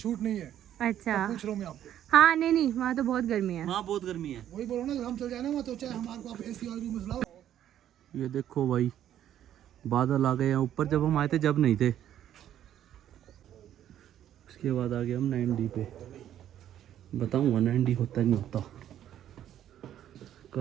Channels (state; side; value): quieter; left; 11.1 dB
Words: नहीं है। अच्छा पूछ रहा हूँ मैं आपको। हाँ नहीं नहीं, वहाँ तो बहुत गर्मी है। वहाँ बहुत गर्मी है। वही बोल रहा हूँ ना, हम चल जाए ना वहाँ तो चाहे हमारे को आप एसी वाले रूम में लाओ। ये देखो भाई, बादल आ गए हैं ऊपर। जब हम आए थे जब नहीं थे। उसके बाद आ गए हम 9D पे। बताऊंगा 9D होता नहीं होता।